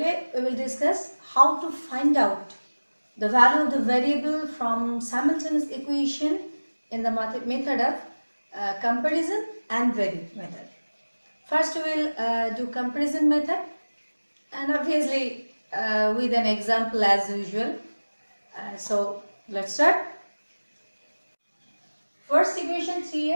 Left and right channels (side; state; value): both; inverted; correlation -1.00